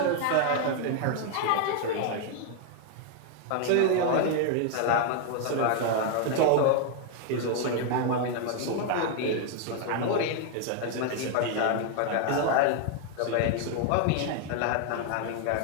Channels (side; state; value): both; different; correlation 0.00